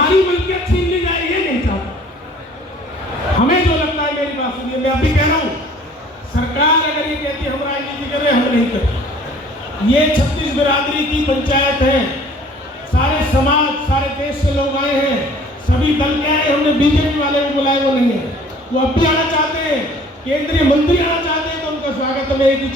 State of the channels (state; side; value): normal; both; correlation 0.52